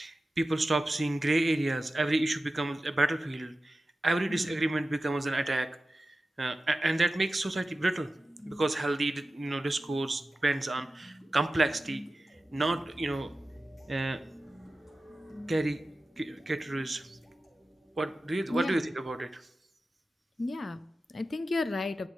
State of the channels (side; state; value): both; normal; correlation 0.94